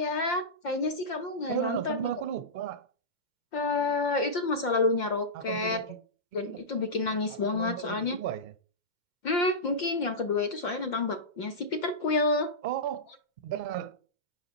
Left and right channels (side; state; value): right; late; 2.1 ms